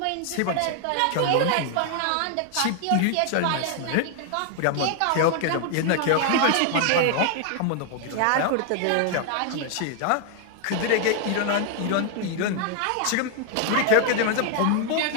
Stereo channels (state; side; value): different; both; correlation 0.00